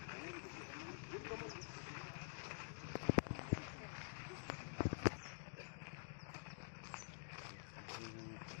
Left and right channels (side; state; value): right; silent; digital silence